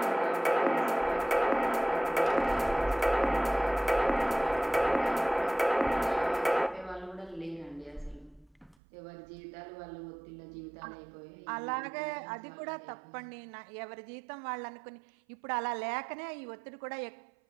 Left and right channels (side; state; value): left; drops out; at 8.8 s